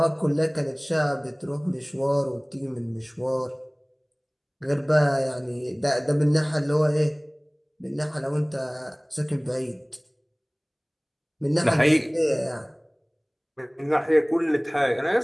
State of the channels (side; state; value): both; identical; correlation 1.00